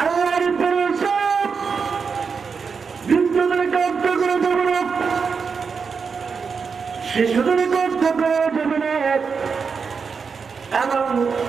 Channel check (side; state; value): left; quieter; 5.6 dB